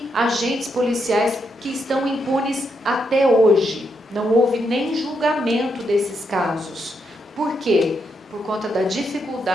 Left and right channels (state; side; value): normal; both; correlation 0.80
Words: agentes policiais que estão impunes até hoje. Não houve nem julgamento desses casos. Por quê? Por conta da